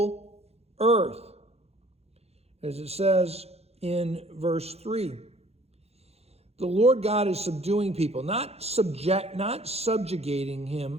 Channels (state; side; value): late; left; 0.30 ms